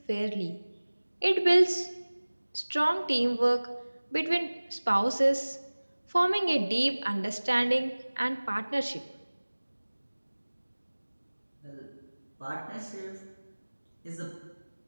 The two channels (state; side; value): inverted; both; correlation -1.00